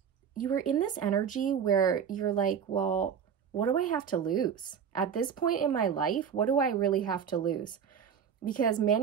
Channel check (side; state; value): left; quieter; 7.6 dB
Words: were in this energy where you're like, well, what do I have to lose? At this point in my life, what do I really have to lose? Because